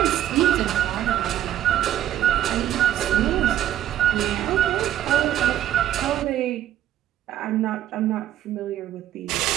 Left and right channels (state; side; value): quieter; left; 12.2 dB